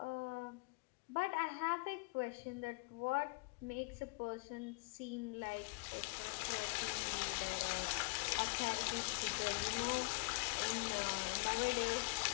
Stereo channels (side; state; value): right; quieter; 30.9 dB